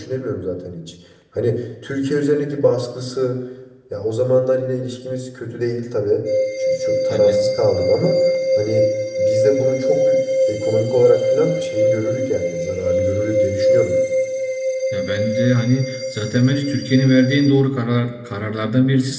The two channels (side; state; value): both; identical; correlation 1.00